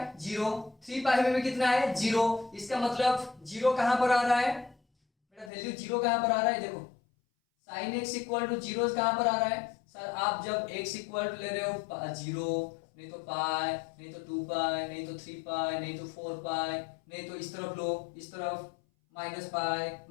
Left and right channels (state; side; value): drops out; right; at 5.5 s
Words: जीरो, 3 पाई में भी कितना है जीरो, इसका मतलब जीरो कहां पर आ रहा है बेटा, वैल्यू जीरो कहां पर आ रहा है, देखो sine x equal to zero कहां पर आ रहा है सर, आप जब x इक्वल टू ले रहे हो जीरो, नहीं तो पाई, नहीं तो 2 पाई, नहीं तो 3 पाई, नहीं तो 4 पाई, नहीं तो इस तरफ लो, इस तरफ माइनस पाई,